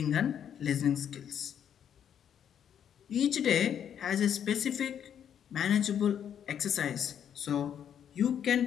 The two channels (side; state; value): right; quieter; 9.0 dB